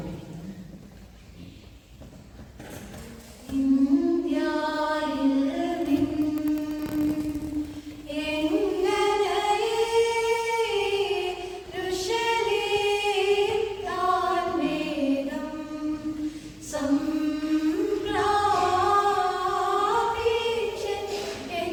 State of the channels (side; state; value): both; identical; correlation 1.00